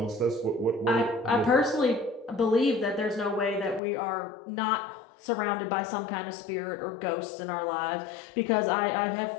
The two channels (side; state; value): right; drops out; at 3.8 s